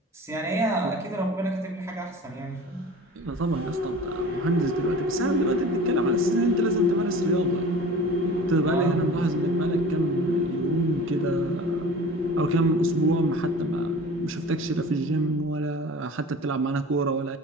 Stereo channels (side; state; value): both; normal; correlation 0.40